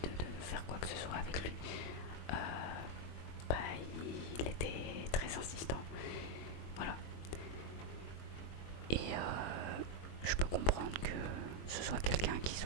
faire quoi que ce soit avec lui, bah il était très insistant. Voilà. Et je peux comprendre que ce soit quelqu'un qui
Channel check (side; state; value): right; late; 22 ms